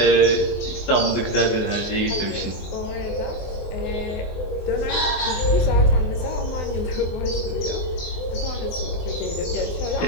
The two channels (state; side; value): late; right; 24 ms